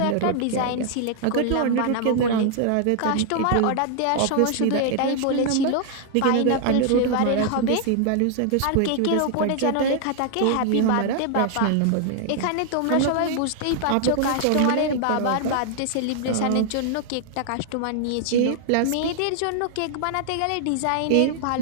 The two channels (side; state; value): both; different; correlation 0.00